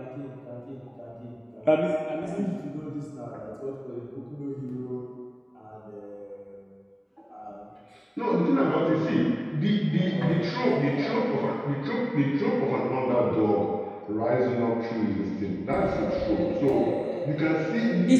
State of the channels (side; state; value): both; identical; correlation 1.00